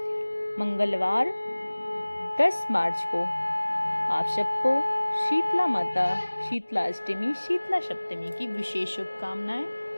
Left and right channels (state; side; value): inverted; both; correlation -1.00